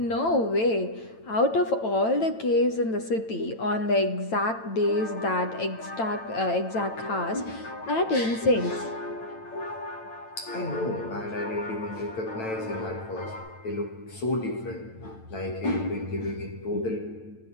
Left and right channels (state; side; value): late; right; 9.0 ms